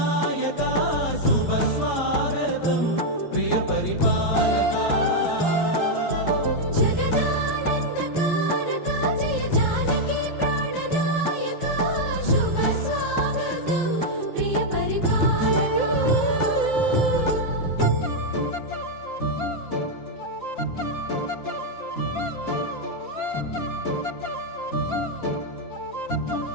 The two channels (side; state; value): right; late; 5.8 ms